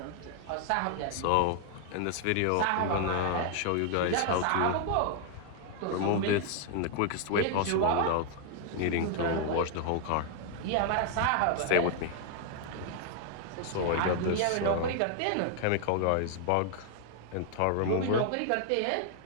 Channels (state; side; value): different; both; correlation 0.00